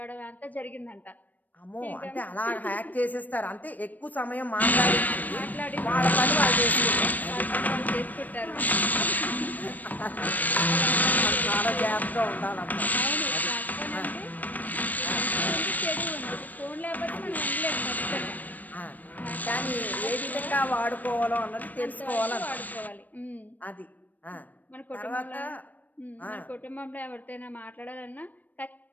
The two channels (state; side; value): late; right; 0.083 ms